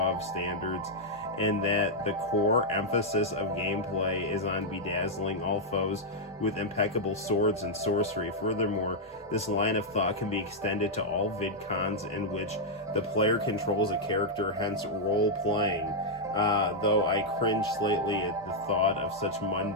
standards, and that the core emphasis of gameplay is on bedazzling all foes with impeccable swords and sorcery. Furthermore, this line of thought can be extended to all VidCons in which the player controls a character, hence role-playing. Though I cringe slightly at the thought of such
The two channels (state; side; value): normal; both; correlation -0.04